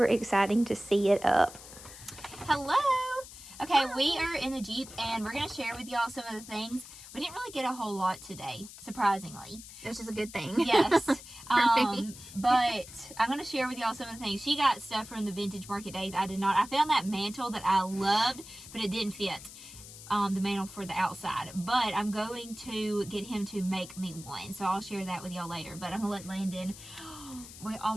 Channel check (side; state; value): left; noise; hiss, 15 dB below the sound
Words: exciting to see it up. Hello. Okay, we are in the Jeep, and we're going to share with y'all some of the things. We didn't really get a whole lot today, surprisingly. Which is a good thing. Yes. me. But I'm going to share with y'all some of the things. She got stuff from the Vintage Market Days. I did not. I found that mantle that I loved, but it didn't fit. The mantle for the outside. But I'm going to get him to make me one. So I'll share that with y'all later. But I'm going to let Landon... We